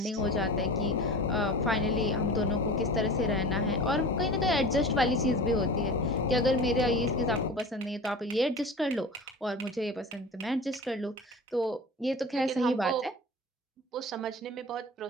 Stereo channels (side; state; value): both; normal; correlation 0.35